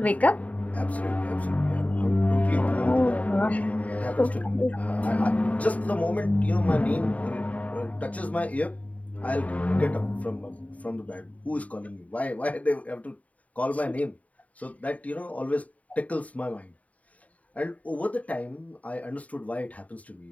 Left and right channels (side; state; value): right; late; 0.070 ms